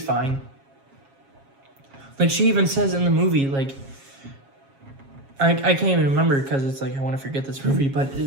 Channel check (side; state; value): left; late; 7.3 ms